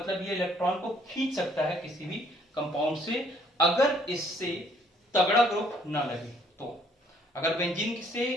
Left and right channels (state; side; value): normal; both; correlation 0.63